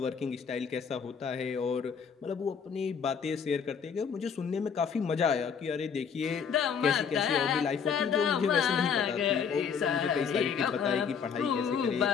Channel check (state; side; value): quieter; right; 6.7 dB